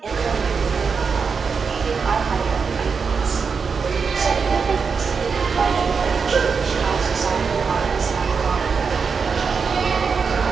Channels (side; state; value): left; quieter; 5.5 dB